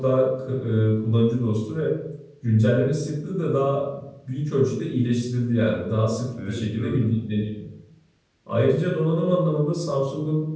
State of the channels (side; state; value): both; identical; correlation 1.00